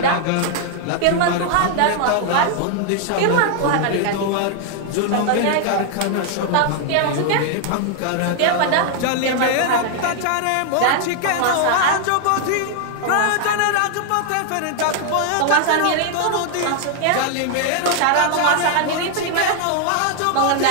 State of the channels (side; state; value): both; different; correlation 0.00